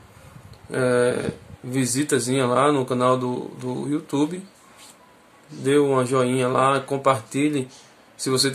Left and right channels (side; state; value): both; identical; correlation 1.00